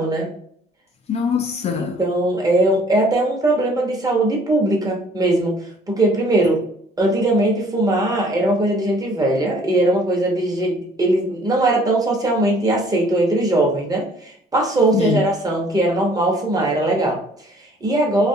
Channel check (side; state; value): both; normal; correlation 0.57